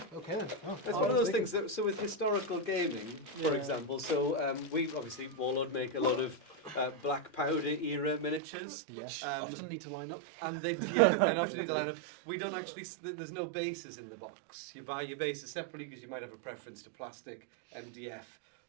Okay then. It's one of those things that, so with historical gaming, for example, so we obviously, Warlord make a lot of black powder era miniatures. Yes. Often need to line up. And they often need to line up. We don't actually, there's no bases in the box. You buy your bases separately because you might have a preference to plastic, MDF,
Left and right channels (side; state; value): left; drops out; at 8.4 s